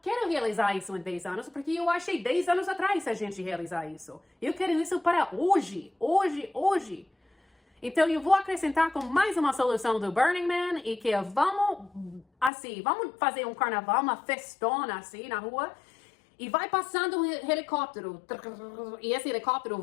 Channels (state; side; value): drops out; right; at 12.5 s